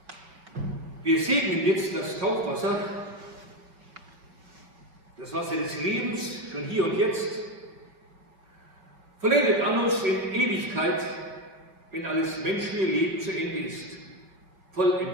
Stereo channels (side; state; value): left; late; 5.0 ms